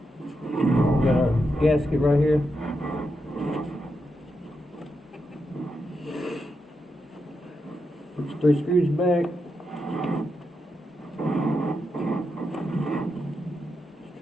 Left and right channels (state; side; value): normal; both; correlation 0.85